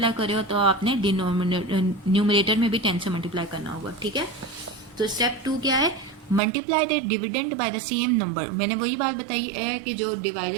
कर रहे हो तो आपने न्यूमरेटर में भी 10 से मल्टीप्लाई करना होगा, ठीक है। तो स्टेप 2 क्या है, multiply the dividend by the same number. मैंने वही बात बताई है कि जो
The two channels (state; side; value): drops out; left; at 6.4 s